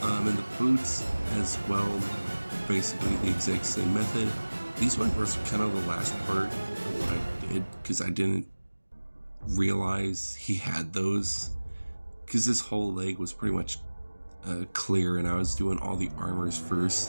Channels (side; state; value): both; inverted; correlation -1.00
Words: And the boots as well, basically the exact same method. These ones were kind of the last part of what I did because I didn't realize he had those, because this whole leg was pretty much clear, and I was doing all the armors